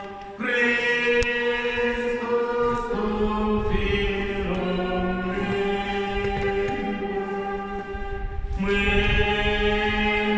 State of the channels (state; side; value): identical; both; correlation 1.00